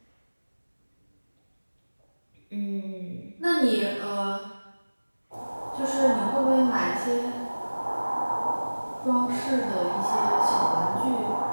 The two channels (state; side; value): inverted; both; correlation -1.00